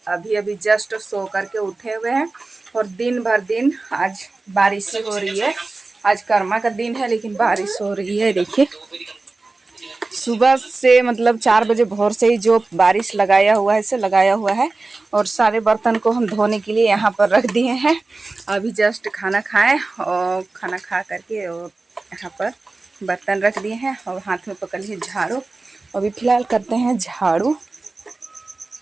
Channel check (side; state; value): left; quieter; 3.5 dB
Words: अभी जस्ट सो करके उठे हुए हैं। और दिन भर दिन आज बारिश हो रही है। आज कर्मा का दिन है लेकिन बारिश हो रही है। देखिए सुबह से मतलब 4 बजे भोर से ही जो बारिश लगाया हुआ है। और सारे बर्तन को हम धोने के लिए यहाँ पर रख दिए हैं। अभी जस्ट खाना खाएं और खाना खा करके और यहाँ पर बर्तन रख दिए हैं और हाथ में पकड़ लिए झाड़ू। अभी फिलहाल करते हैं झाड़ू।